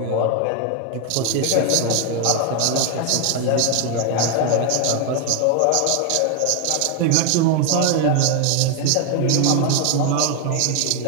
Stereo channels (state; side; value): different; both; correlation 0.01